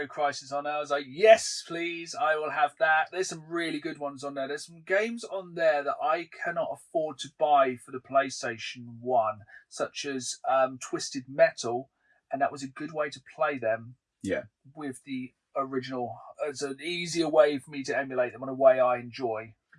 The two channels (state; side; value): identical; both; correlation 1.00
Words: Crisis on. I was like, yes, please, I will have that. There's some really good ones on there. There's some games on there that I cannot afford to buy for the PlayStation 1, such as Twisted Metal, and that was a good way to play them. Yeah. With the original. It's an easier way for me to emulate them in a way I enjoy.